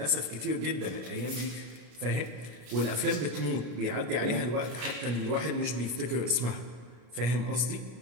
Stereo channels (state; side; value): late; left; 33 ms